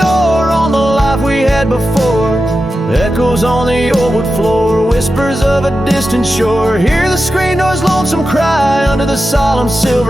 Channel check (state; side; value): normal; both; correlation 0.91